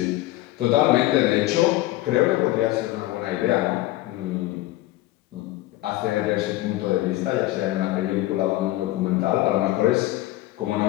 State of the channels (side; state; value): right; quieter; 16.9 dB